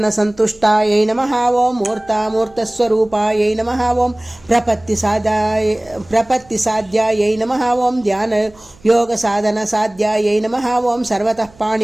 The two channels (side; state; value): right; noise; hum, 27 dB below the sound